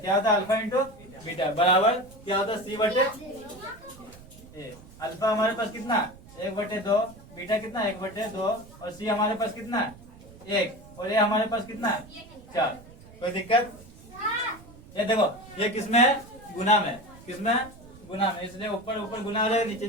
होता है, अल्फा इंटू बीटा बराबर क्या होता है, सी बटे ए। अल्फा हमारे पास कितना, 1/2, बीटा कितना 1/2, और सी हमारे पास कितना 1, और ए हमारे पास कितना 4। कोई दिक्कत? ये देखो, ये किसमें है, गुना में। किसमें है, गुना में, इसलिए ऊपर ऊपर गुना हो जाएगा, नीचे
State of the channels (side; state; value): right; noise; rumble, 20 dB below the sound